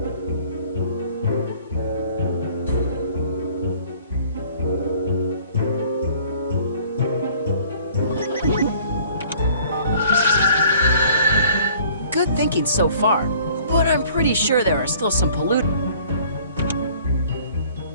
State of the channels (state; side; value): inverted; both; correlation -0.54